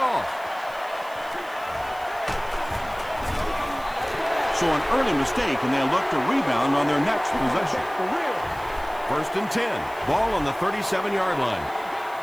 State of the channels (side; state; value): right; noise; hiss, 23 dB below the sound